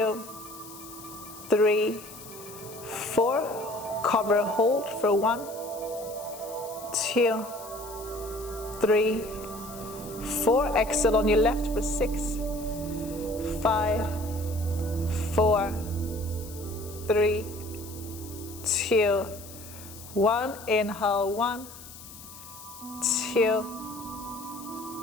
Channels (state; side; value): noise; left; hiss, 16 dB below the sound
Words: 3, 4. Cover, hold for 1, 2, 3, 4. Exhale on your left for 6, 5, 4, 3, 2, 1. Inhale 1, 2,